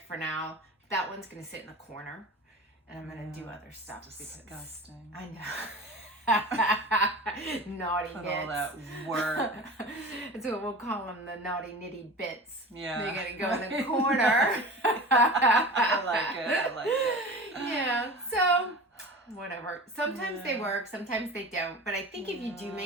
for now. That one's going to sit in the corner, and I'm going to do other stuff. Disgusting. I know. Naughty Put bits. all that work. That's what we'll call them, the naughty nitty bits. Yeah. They're going to go in the corner. I like it. Yeah, so whatever. Sometimes they work, sometimes they don't. But I think if you do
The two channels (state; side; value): normal; both; correlation 0.35